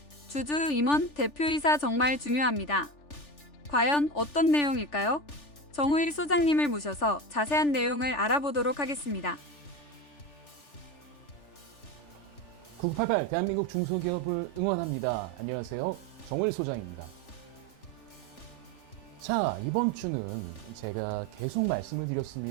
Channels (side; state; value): right; late; 3.4 ms